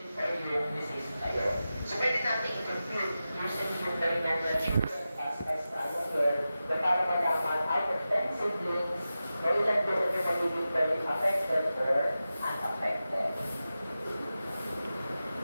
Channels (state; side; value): inverted; both; correlation -0.93